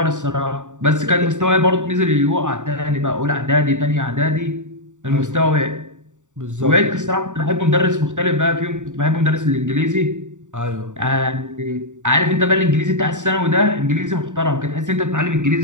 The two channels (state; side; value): late; left; 0.86 ms